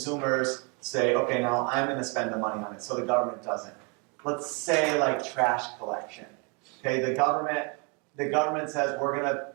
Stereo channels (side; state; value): left; quieter; 33.4 dB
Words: say, okay, now I'm going to spend the money on it, so the government doesn't. Let's say like trash collection. Okay, the government says we're going